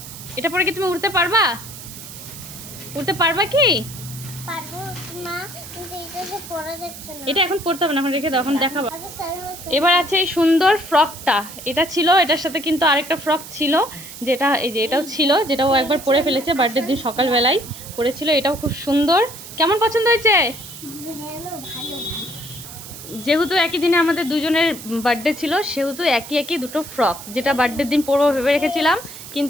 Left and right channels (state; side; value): noise; right; hiss, 13 dB below the sound